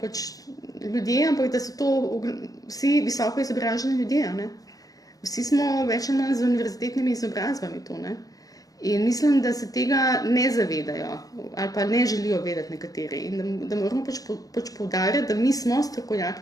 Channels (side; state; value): right; late; 0.17 ms